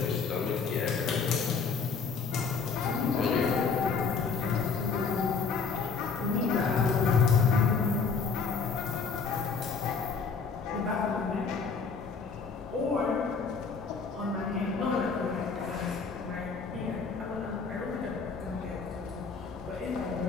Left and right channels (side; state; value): right; quieter; 5.3 dB